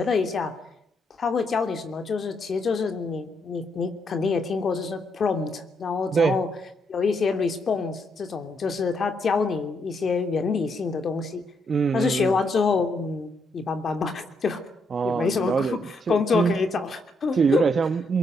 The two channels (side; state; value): both; normal; correlation 0.76